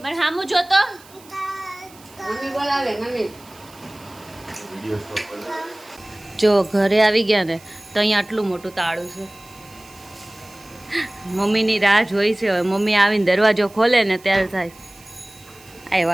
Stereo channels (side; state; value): right; noise; hiss, 24 dB below the sound